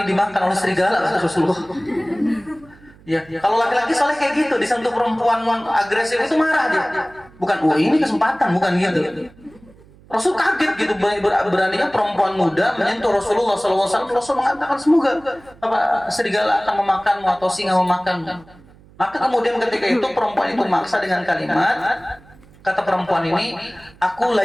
dimakan oleh serigala, kata Rasulullah. Ya, kalau laki-laki soalnya kayak gitu, disentuh perempuan agresif itu marah dia. Bukan, ini kesempatan, bukan gitu. Rasul kaget gitu, beraninya perempuan muda menyentuh Rasulullah SAW. Rasul mengatakan semoga serigala akan memakanmu atau singa memakanmu. Maka kemudian ketika itu perempuan itu maksa dengan kalimat, kata perempuan ini, aku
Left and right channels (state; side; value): noise; right; hum, 25 dB below the sound